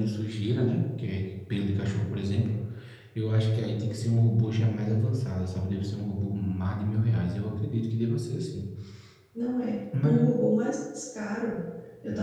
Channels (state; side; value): identical; both; correlation 1.00